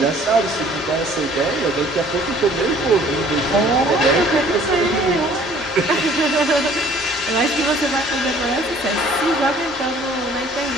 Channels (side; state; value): both; normal; correlation 0.55